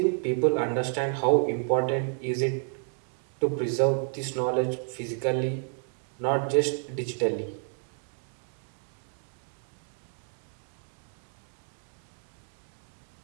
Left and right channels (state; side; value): silent; left; 55 dB below the other